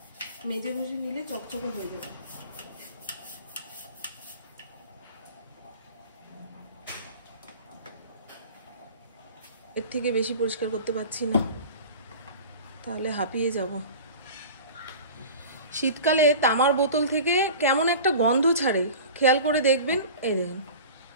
মেজে ঘষে নিলে চকচকে হয়ে যাবে। এর থেকে বেশি পরিষ্কার করতে পারছি না, তাহলে হাঁপিয়ে যাব। শীতকালে তামার বোতল থেকে কেমন একটা গন্ধ ছাড়ে, খেয়াল করে দেখবেন। এই দেখুন,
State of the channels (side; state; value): both; inverted; correlation -0.37